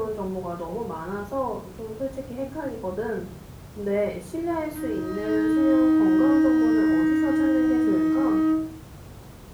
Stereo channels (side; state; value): both; identical; correlation 1.00